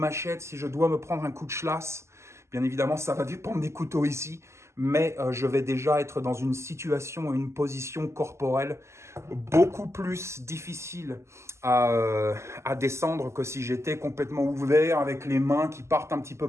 si je dois me prendre un coup de schlass, bien évidemment, ça va dépendre des couteaux ici. Mais je vais déjà être dans une situation, une position corporelle beaucoup plus difficile à descendre que si j'étais complètement ouvert avec les mains qui partent un petit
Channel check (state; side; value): late; left; 0.13 ms